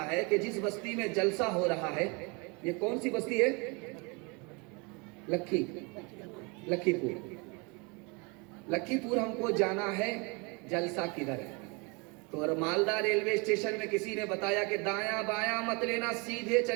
ہے کہ جس بستی میں جلسہ ہو رہا ہے یہ کون سی بستی ہے؟ لکھی پور ہم کو جانا ہے، جلسہ کدھر ہے؟ تو اور مالدہ ریلوے اسٹیشن میں کسی نے بتایا کہ دایاں بایاں مت لینا، سیدھے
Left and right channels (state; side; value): quieter; left; 30.3 dB